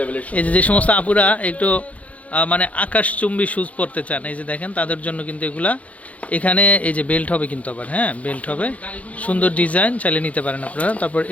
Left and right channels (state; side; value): late; right; 0.067 ms